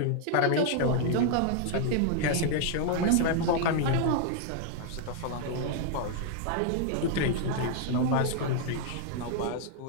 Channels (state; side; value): different; both; correlation 0.00